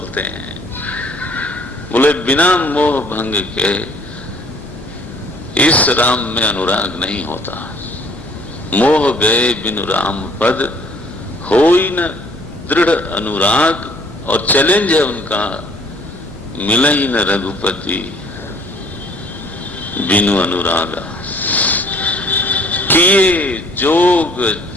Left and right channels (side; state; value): both; normal; correlation 0.57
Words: हैं। बोले बिना मोह भंग के इस राम में अनुराग नहीं होता। मोह गए बिनु राम पद, होई न दृढ़ अनुराग। और चैलेंज है उनका, मिले ही न रघुपति बिनु अनुरागा। किए जोग